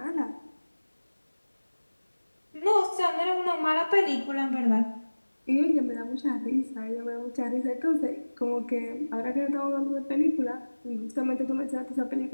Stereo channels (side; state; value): both; inverted; correlation -1.00